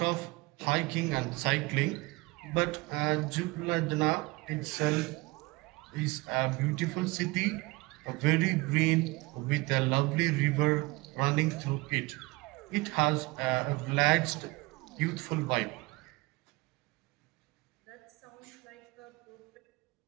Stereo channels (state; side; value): quieter; left; 23.6 dB